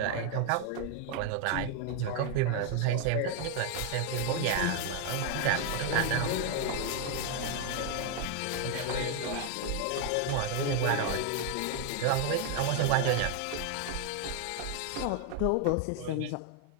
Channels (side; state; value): both; different; correlation 0.01